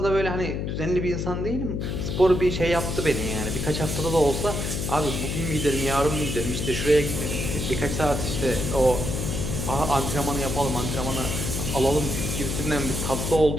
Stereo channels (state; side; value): noise; left; hum, 2 dB below the sound